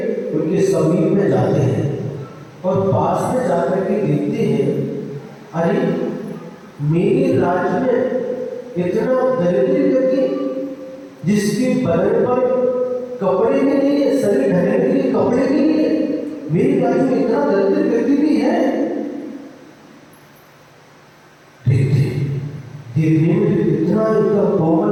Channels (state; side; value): identical; both; correlation 1.00